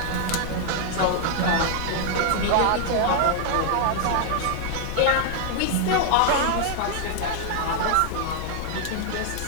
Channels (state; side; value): different; both; correlation 0.00